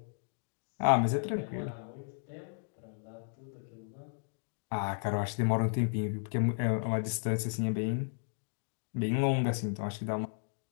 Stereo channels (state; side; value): silent; right; digital silence